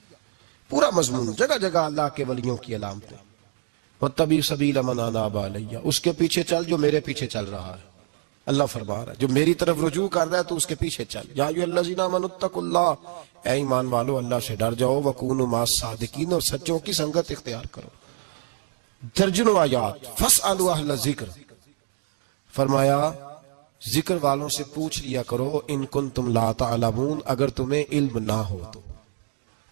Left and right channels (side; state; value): left; silent; digital silence